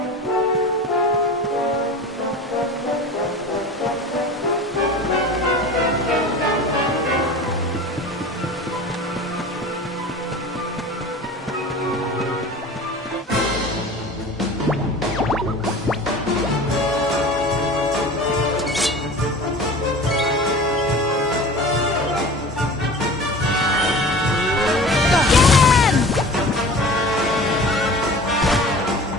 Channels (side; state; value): both; normal; correlation 0.38